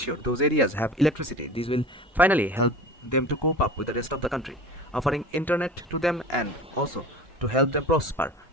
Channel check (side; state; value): both; normal; correlation 0.36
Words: those areas have electricity, this will finally help them to cope up with the rest of the country, offering internet to them and also to help them prosper